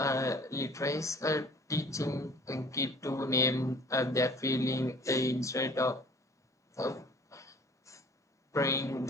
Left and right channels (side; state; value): both; normal; correlation 0.50